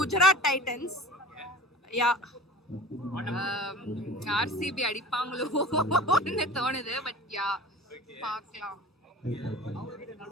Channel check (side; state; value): both; normal; correlation 0.41